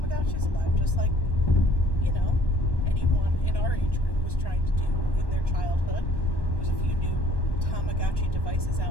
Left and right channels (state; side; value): late; right; 1.1 ms